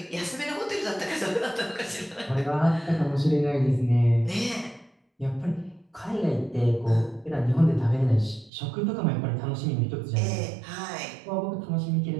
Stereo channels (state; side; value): drops out; left; at 8.5 s